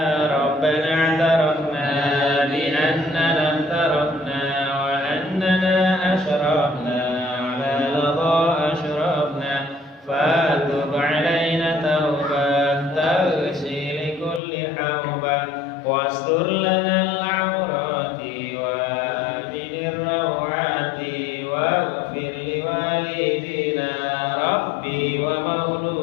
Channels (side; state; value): right; drops out; at 14.4 s